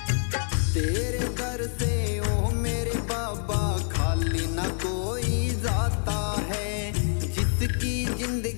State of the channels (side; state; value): right; silent; 60 dB below the other